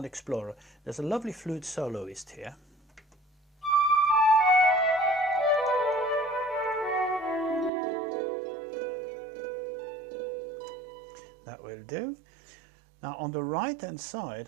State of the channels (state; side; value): drops out; left; at 7.7 s